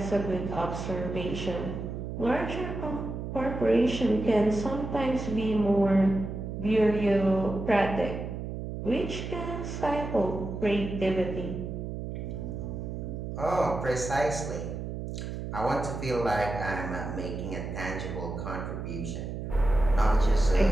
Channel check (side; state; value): right; noise; hum, 6 dB below the sound